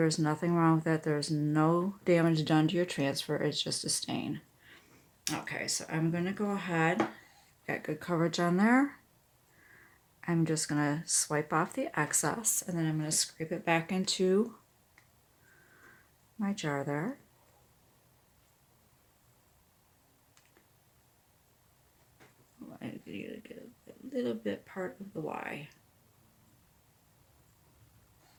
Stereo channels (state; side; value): identical; both; correlation 1.00